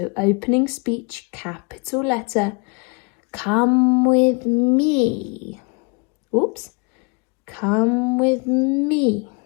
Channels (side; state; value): right; quieter; 33.5 dB